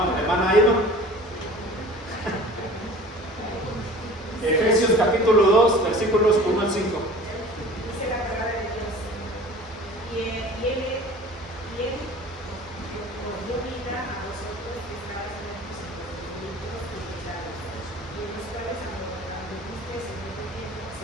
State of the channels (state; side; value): normal; both; correlation 0.43